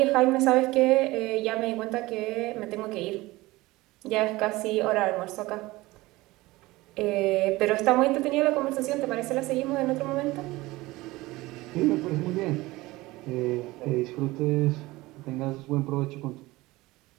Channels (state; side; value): quieter; left; 20.0 dB